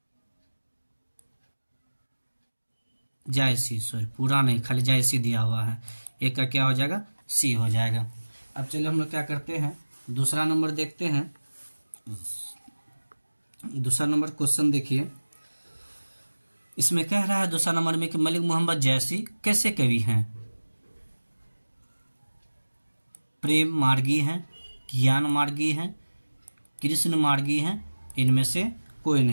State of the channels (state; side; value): inverted; both; correlation -1.00